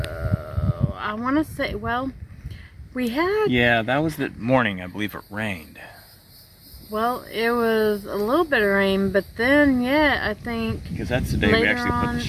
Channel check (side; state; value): both; identical; correlation 1.00